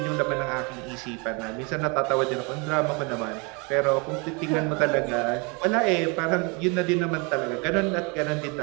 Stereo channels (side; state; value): left; quieter; 31.0 dB